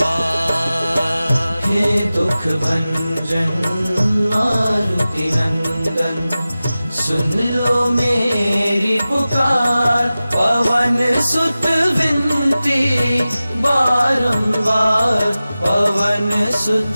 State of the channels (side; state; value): both; inverted; correlation -0.96